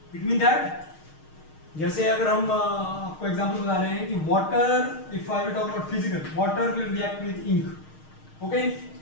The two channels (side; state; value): right; late; 6.5 ms